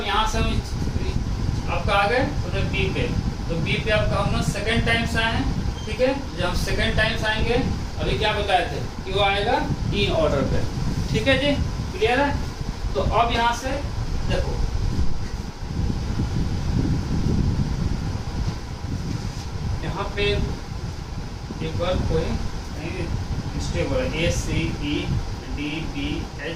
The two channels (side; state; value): both; identical; correlation 1.00